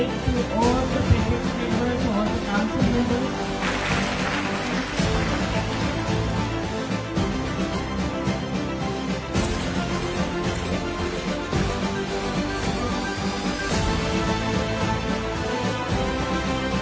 to all the parents members, all the council members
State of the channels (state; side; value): identical; both; correlation 1.00